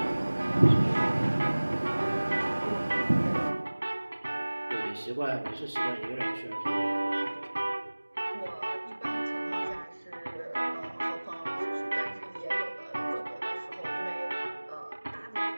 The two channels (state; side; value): inverted; both; correlation -1.00